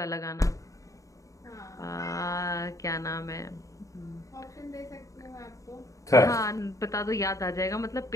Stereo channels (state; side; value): late; right; 0.16 ms